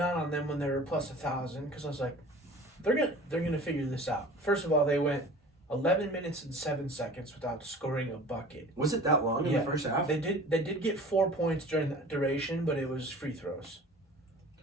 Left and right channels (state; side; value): normal; both; correlation 0.42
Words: on them when they were plus 1,000 because I was like, they're gonna figure this out. First of all, they went 11 minutes and 7 seconds without scoring a bucket. Was it that long in the first half? They did get 4 points during that duration, but it was free throws.